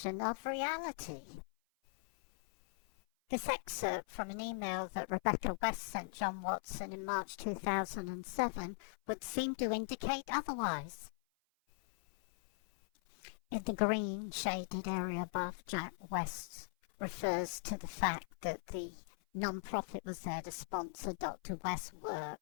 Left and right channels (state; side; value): silent; right; 51 dB below the other